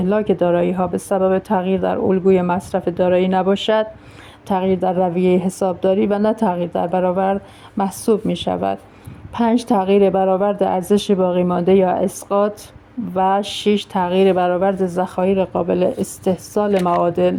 دارایی‌ها به سبب تغییر در الگوی مصرف دارایی نباشد، تغییر در رویه حسابداری و نه تغییر در برآورد محسوب می شود. 5، تغییر برآورد ارزش باقی مانده یا اسقاط. و 6، تغییر برآورد ذخایر قابل استحصال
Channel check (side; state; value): both; identical; correlation 1.00